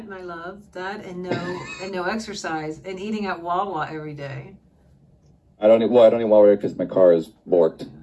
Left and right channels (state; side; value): identical; both; correlation 1.00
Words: my love. That and no exercise and eating at Wawa every day. I don't eat Wawa because my car is borked.